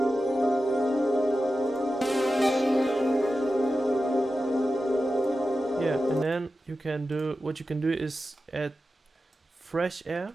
Yeah, and then you can do what you can do is add fresh air,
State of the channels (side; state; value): both; normal; correlation 0.92